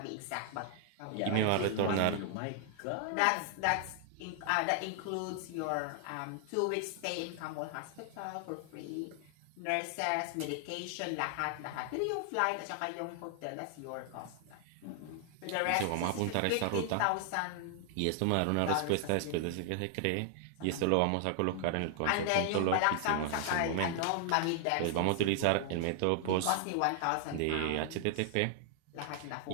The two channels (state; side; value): different; both; correlation 0.00